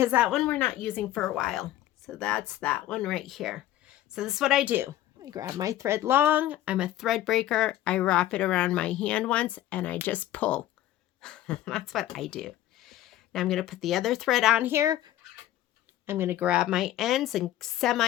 that one we're not using for a while. So that's that one right here. So this is what I do. I grab my thread long. I'm a thread breaker. I wrap it around my hand once, and I just pull. That's what I do. Now I'm going to put the other thread on here. I'm going to grab my ends and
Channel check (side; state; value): right; quieter; 13.6 dB